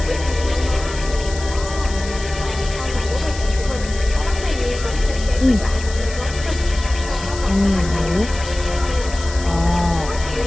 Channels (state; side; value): noise; left; hiss, 13 dB below the sound